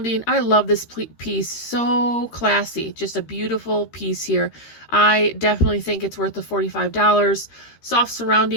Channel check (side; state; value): right; late; 13 ms